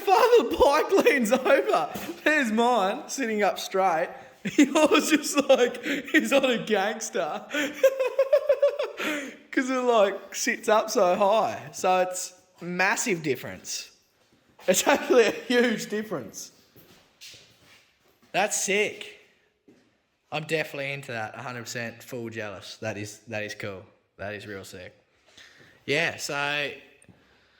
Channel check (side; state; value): both; identical; correlation 1.00